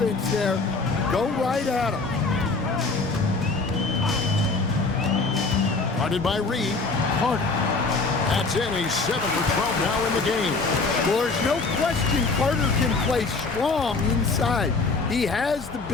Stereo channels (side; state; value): right; quieter; 3.9 dB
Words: there. Go right at him. Guarded by Reed. Carter. That's in. He's 7 for 12 now in the game. Well, there's no question Carter can play strong inside. He has the